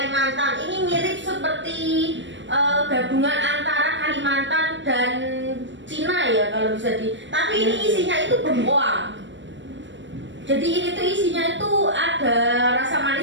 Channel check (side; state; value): left; late; 0.54 ms